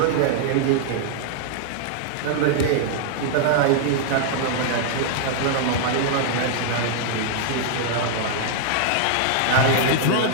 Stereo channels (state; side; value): different; both; correlation -0.01